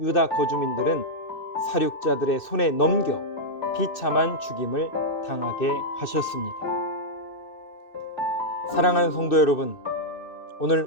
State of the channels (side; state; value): right; late; 2.6 ms